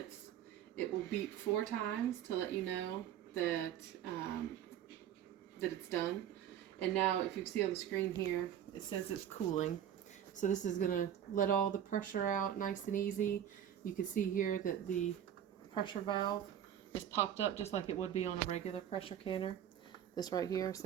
It will beep 4 times to let you know that that it's done. And now, if you see on the screen here, it says it's cooling. So this is gonna let all the pressure out nice and easy. You can see here that the pressure valve is popped up just like it would be on a regular pressure canner. This right here,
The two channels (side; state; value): left; quieter; 10.1 dB